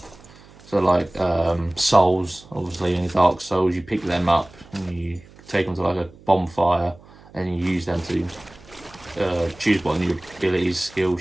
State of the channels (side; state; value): right; noise; hum, 24 dB below the sound